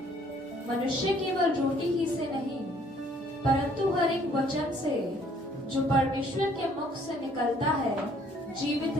मनुष्य केवल रोटी ही से नहीं परंतु हर एक वचन से जो परमेश्वर के मुख से निकलता है जीवित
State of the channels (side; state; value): both; normal; correlation 0.61